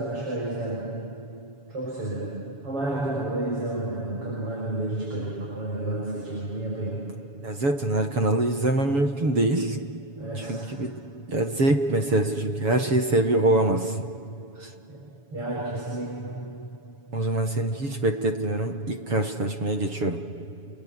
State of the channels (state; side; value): late; left; 7.1 ms